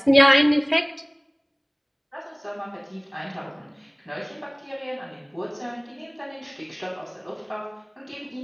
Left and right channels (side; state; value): both; identical; correlation 1.00